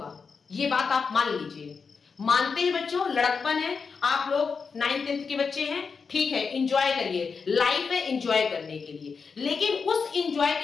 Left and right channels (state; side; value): quieter; right; 5.3 dB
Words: ये बात आप मान लीजिए। मानते हैं बच्चों, लड़कपन है, आप लोग 9th 10th के बच्चे हैं, ठीक है, एंजॉय करिए, लाइफ है एंजॉय करने के लिए। लेकिन उस एंजॉय